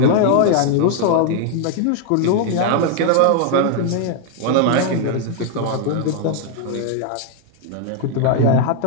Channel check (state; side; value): different; both; correlation 0.00